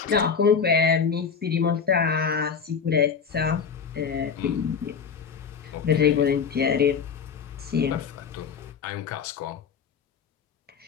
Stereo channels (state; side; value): quieter; right; 6.3 dB